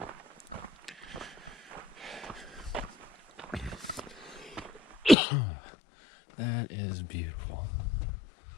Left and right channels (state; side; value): drops out; right; at 5.2 s